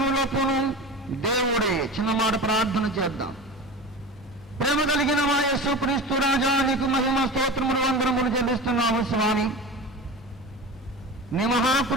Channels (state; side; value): normal; both; correlation 0.31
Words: దేవుడే. చిన్న మాట ప్రార్థన చేద్దాం. ప్రేమ కలిగిన మా యేసుక్రీస్తు రాజా, నీకు మహిమ స్తోత్రములు వందనములు చెల్లిస్తున్నాము స్వామి. నీ